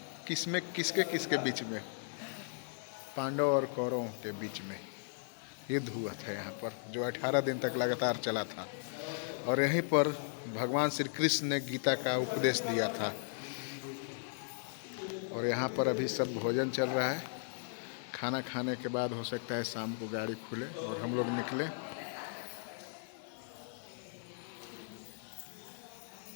किसमें किसके बीच में? पांडव और कौरवों के बीच में युद्ध हुआ था यहाँ पर, जो 18 दिन तक लगातार चला था। और यहीं पर भगवान श्री कृष्ण ने गीता का उपदेश दिया था। और यहाँ पर अभी सब भोजन चल रहा है। खाना खाने के बाद हो सकता है शाम को गाड़ी खुले और हम लोग निकलें।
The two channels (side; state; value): right; silent; 53 dB below the other